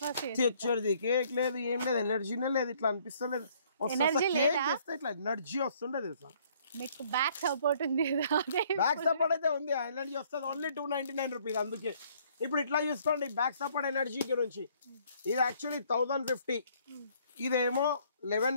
తెచ్చేది కేక్ లేదు, ఏం లేదు, ఎనర్జీనే లేదు, ఇట్లా అనిపిస్తలేదు. కేక్ చేస్తే ఇట్లా ఎనర్జీ వస్తుండే తెలుసా. మీకు బ్యాక్ సపోర్ట్ ఉంది కదా. బ్యాక్ సపోర్ట్ అయితే ఉంది, ఎనర్జీ వస్తుంది. Only 299 rupees. అందుకే ఇప్పుడు ఇట్లా చూసుకోండి బ్యాక్ సపోర్ట్ ఎనర్జీ గురించి. ఇది యాక్చువల్లీ 1050, ఇదేమో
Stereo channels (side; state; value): both; inverted; correlation -0.62